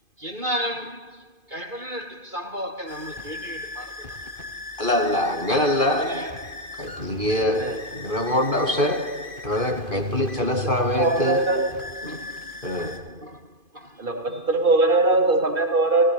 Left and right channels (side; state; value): left; late; 2.5 ms